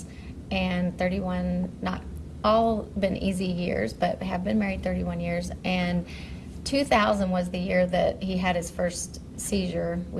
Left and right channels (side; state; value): both; identical; correlation 1.00